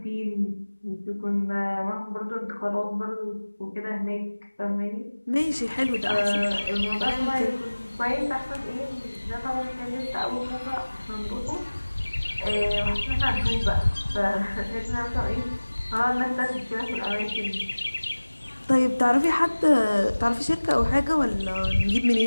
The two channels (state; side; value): inverted; both; correlation -1.00